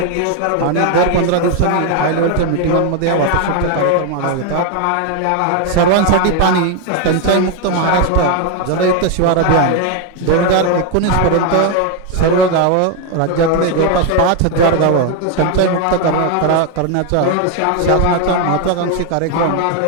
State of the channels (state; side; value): different; both; correlation 0.01